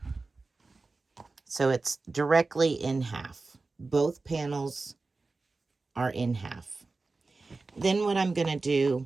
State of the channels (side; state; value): left; quieter; 3.7 dB